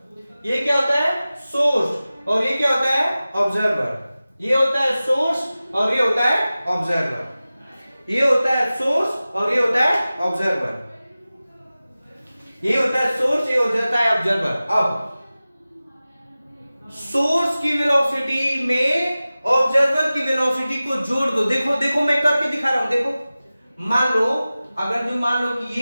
ये क्या होता है? सोर्स। और ये क्या होता है? ऑब्जर्वर। ये होता है सोर्स और ये होता है ऑब्जर्वर। ये होता है सोर्स और ये होता है ऑब्जर्वर। ये होता है सोर्स, ये हो जाता है ऑब्जर्वर। अब सोर्स की वेलोसिटी में ऑब्जर्वर की वेलोसिटी को जोड़ दो। देखो देखो, मैं करके दिखा रहा हूं, देखो। मान लो, अगर जो मान लो कि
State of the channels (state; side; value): inverted; both; correlation -0.96